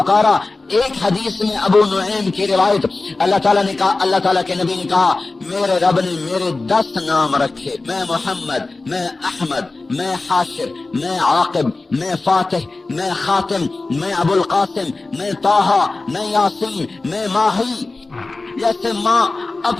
ایک حدیث میں ابو نعیم کی روایت، اللہ تعالیٰ نے کہا، اللہ تعالیٰ کے نبی نے کہا میرے رب نے میرے 10 نام رکھے، میں محمد، میں احمد، میں حاشر، میں عاقب، میں فاتح، میں خاتم، میں ابو القاسم، میں طٰہٰ، میں یاسین، میں ماہی۔ جیسے ماں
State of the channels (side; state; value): right; quieter; 3.4 dB